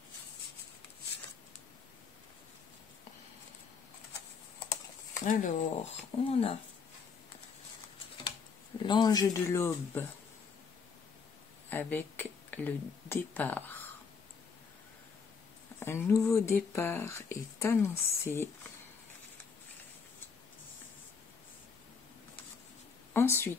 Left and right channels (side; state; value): right; quieter; 5.6 dB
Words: Alors, on a l'ange de l'aube avec le départ. Un nouveau départ est annoncé.